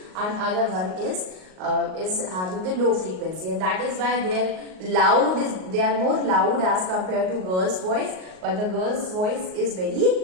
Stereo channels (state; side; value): late; left; 38 ms